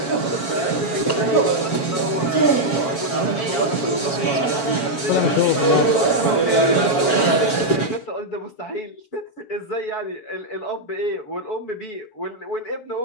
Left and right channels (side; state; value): right; late; 7.2 ms